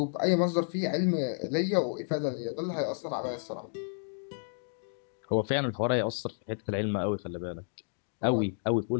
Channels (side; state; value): right; silent; digital silence